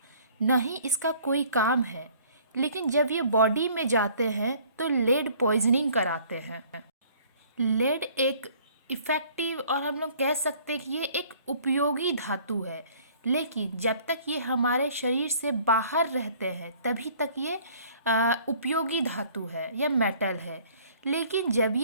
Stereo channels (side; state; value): both; inverted; correlation -0.55